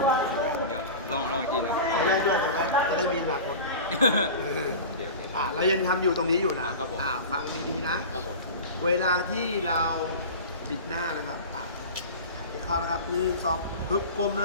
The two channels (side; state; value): both; inverted; correlation -0.32